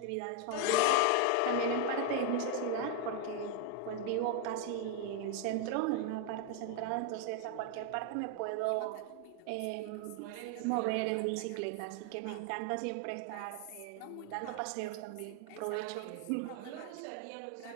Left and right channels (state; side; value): different; both; correlation 0.01